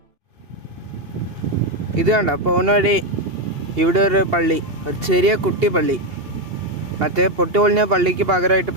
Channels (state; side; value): late; left; 2.8 ms